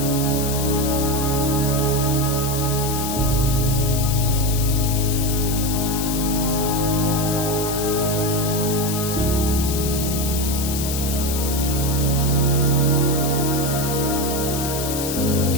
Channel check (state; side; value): noise; left; hiss, 5 dB below the sound